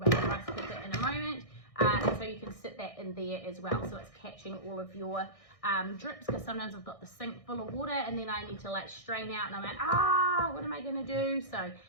the rice cooker in a moment. And so you can sit that in there as well, so it's catching all of your drips, because sometimes I've got the sink full of water and then I need to like strain out and I'm like, what am I going to do? So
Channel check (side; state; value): right; late; 1.6 ms